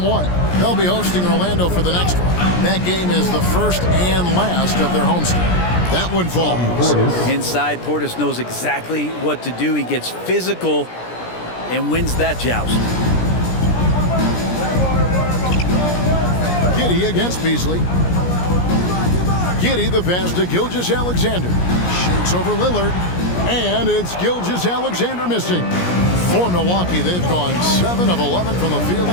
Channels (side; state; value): right; late; 17 ms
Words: They'll be hosting Orlando for the next one. That game is the first and last of their homestand. That one falls. Inside, Portis knows exactly what to do. He gets physical and wins that joust. Giddey against Beasley. Giddey the pass to Gilgeous-Alexander. Shoots over Lillard. And it's Gilgeous-Alexander missing. For Milwaukee, they've gone 7 of 11 from the field